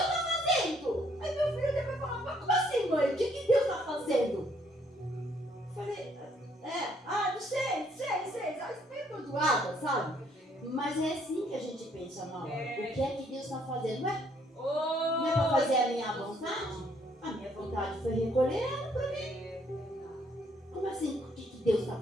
está fazendo? Aí meu filho depois falou, mas como assim, mãe? O que Deus está fazendo? Eu falei, não sei, meio perdoada, sabe? Mas é assim que a gente pensa na hora. O que é que Deus está fazendo? Não é para fazer a minha vontade? A minha vontade foi recolher ela para mim. Como assim? O que Deus está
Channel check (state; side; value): normal; both; correlation 0.67